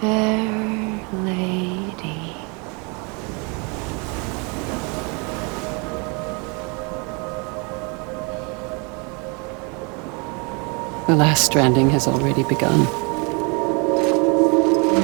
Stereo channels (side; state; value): left; quieter; 32.0 dB